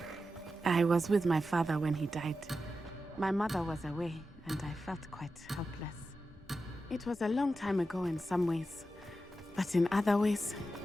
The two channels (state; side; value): normal; both; correlation 0.91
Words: I was with my father when he died. My mother was away, and I felt quite helpless. It was a long time ago in some ways, but in other ways,